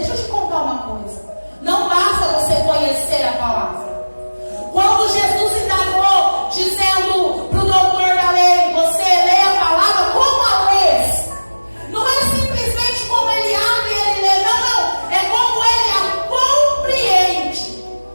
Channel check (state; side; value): inverted; both; correlation -1.00